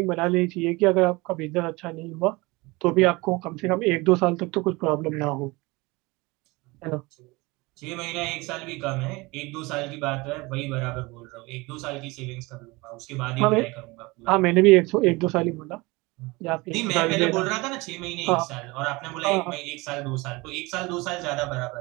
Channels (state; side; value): quieter; left; 23.7 dB